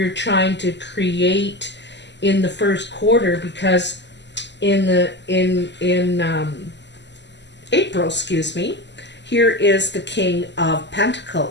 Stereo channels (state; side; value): late; right; 0.51 ms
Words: trying to create in the first quarter, because in April, excuse me, here is the King of